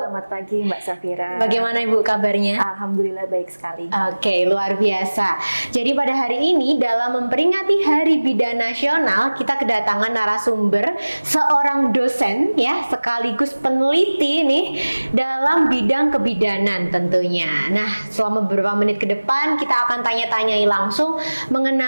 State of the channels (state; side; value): inverted; both; correlation -1.00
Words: pagi Mbak Safira. Bagaimana Ibu kabarnya? Alhamdulillah baik sekali. Oke, luar biasa. Jadi pada hari ini dalam memperingati Hari Bidan Nasional, kita kedatangan narasumber seorang dosen ya, sekaligus peneliti nih dalam bidang kebidanan tentunya. Nah, selama beberapa menit ke depan kita akan tanya-tanyai langsung